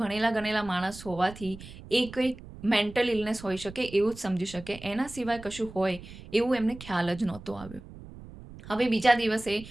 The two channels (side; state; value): right; noise; rumble, 16 dB below the sound